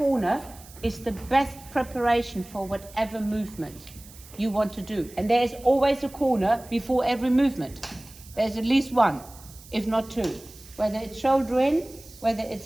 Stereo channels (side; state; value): right; noise; hiss, 20 dB below the sound